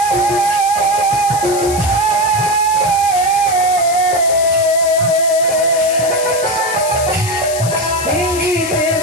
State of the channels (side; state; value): left; noise; hiss, 8 dB below the sound